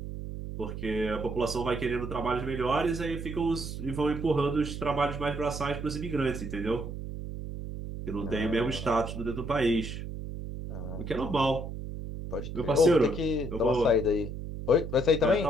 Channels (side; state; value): right; noise; hum, 7 dB below the sound